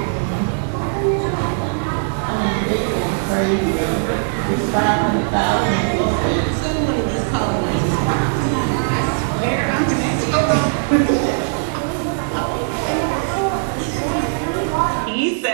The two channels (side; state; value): left; silent; digital silence